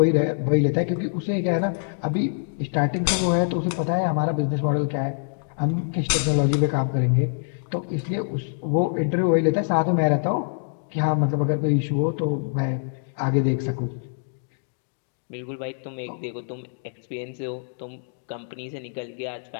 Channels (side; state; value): right; silent; digital silence